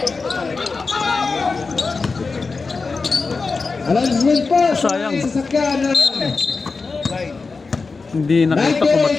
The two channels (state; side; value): quieter; right; 4.3 dB